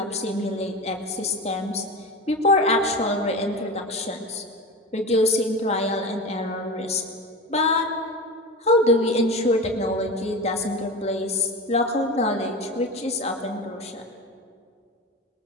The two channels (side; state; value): both; normal; correlation 0.27